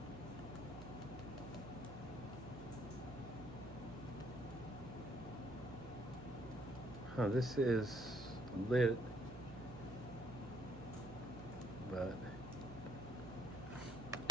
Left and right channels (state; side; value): noise; right; hum, 12 dB below the sound